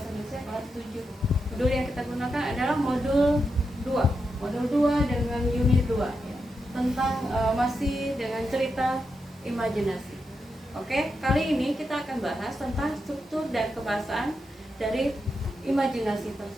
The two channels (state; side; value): normal; both; correlation 0.86